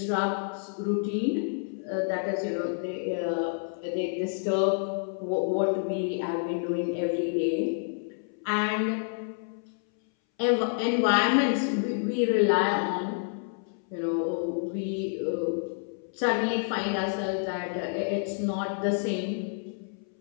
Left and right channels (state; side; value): silent; right; 59 dB below the other